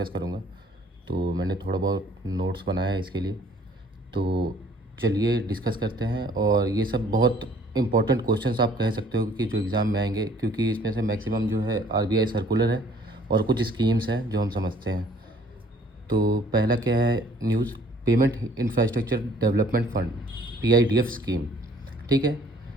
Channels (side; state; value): both; normal; correlation 0.57